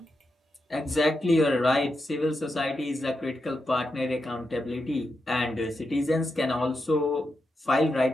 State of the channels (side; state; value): both; normal; correlation 0.86